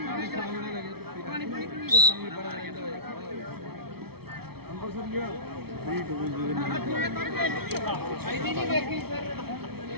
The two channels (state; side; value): late; left; 0.95 ms